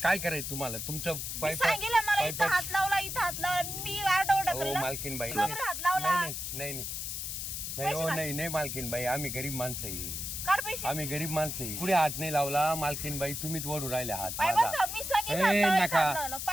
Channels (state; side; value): noise; left; hiss, 5 dB below the sound